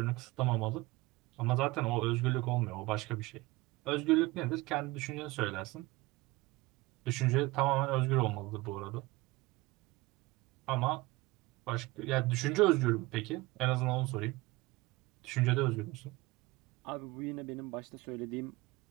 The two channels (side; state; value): left; quieter; 20.9 dB